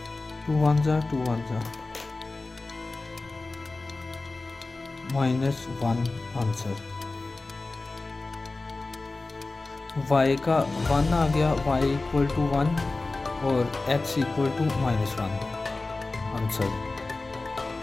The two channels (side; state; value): right; quieter; 3.4 dB